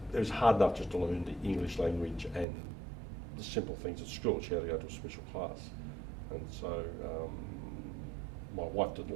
was hard enough just to learn the English language and the simple things at school. She had to go to a special class. And so my wife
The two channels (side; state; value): left; drops out; at 2.5 s